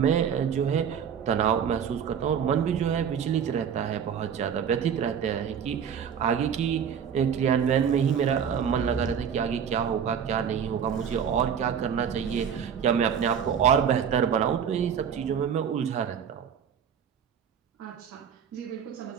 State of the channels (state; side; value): quieter; left; 7.8 dB